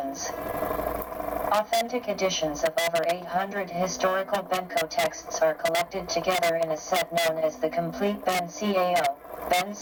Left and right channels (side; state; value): both; identical; correlation 1.00